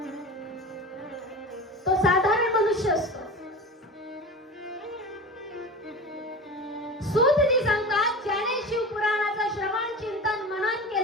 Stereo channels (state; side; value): normal; both; correlation 0.32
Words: मनुष्य असतो. सूतजी सांगतात, ज्याने शिवपुराणाचं श्रवण चिंतन मनन